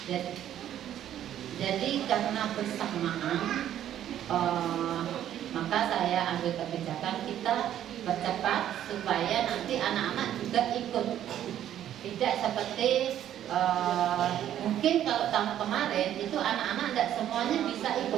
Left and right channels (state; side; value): quieter; left; 11.1 dB